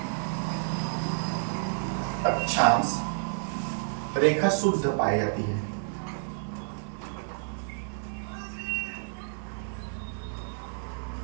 रेखा शुद्ध पाई जाती है।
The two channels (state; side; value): silent; left; digital silence